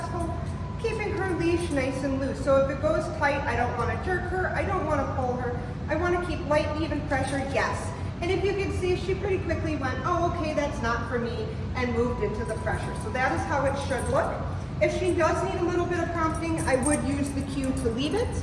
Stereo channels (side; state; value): both; identical; correlation 1.00